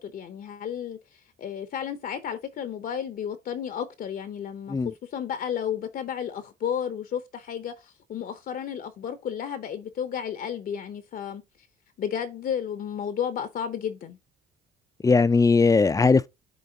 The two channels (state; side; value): quieter; right; 4.9 dB